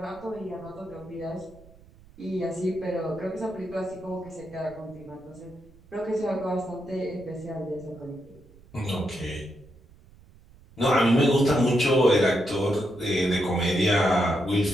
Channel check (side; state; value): right; noise; rumble, 25 dB below the sound